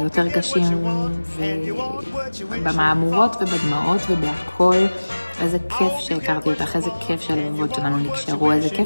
קשים, ובמאמורות ובדמעות ובהכל. איזה כיף שהכרתי אותך, איזה כיף שהלבבות שלנו נקשרו, איזה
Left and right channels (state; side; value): inverted; both; correlation -1.00